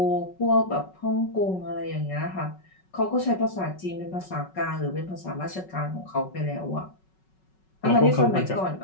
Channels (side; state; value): right; late; 5.4 ms